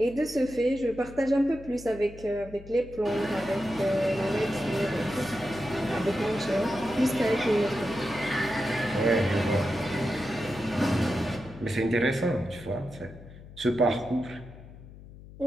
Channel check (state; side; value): noise; left; hum, 17 dB below the sound